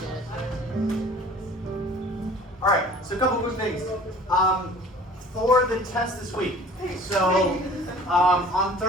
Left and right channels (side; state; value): both; normal; correlation 0.47